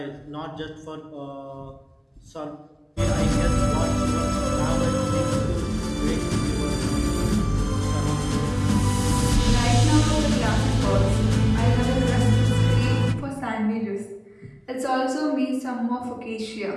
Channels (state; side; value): identical; both; correlation 1.00